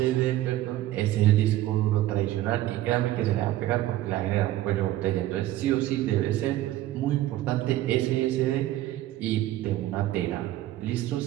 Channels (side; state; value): left; quieter; 14.7 dB